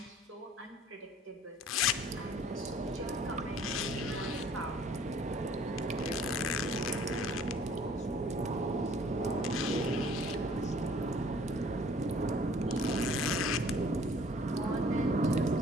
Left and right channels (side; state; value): both; normal; correlation 0.55